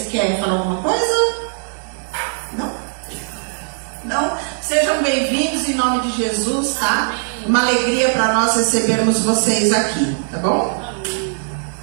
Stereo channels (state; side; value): silent; left; 66 dB below the other